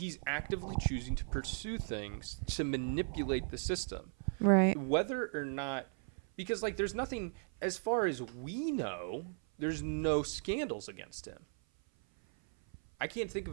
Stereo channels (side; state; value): left; silent; 53 dB below the other